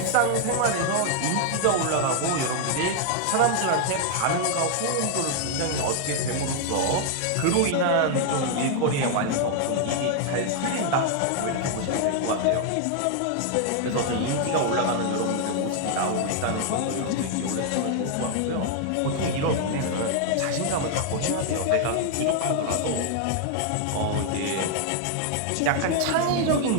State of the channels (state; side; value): different; both; correlation 0.00